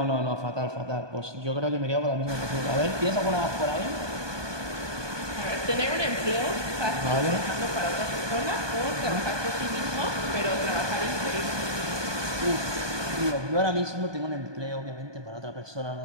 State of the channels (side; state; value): left; late; 1.2 ms